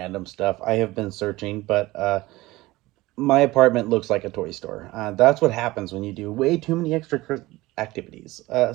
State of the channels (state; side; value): quieter; left; 19.3 dB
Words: stuff. I have been searching, but my apartment looks like a toy store. That's what happens when you do way too many extra activities.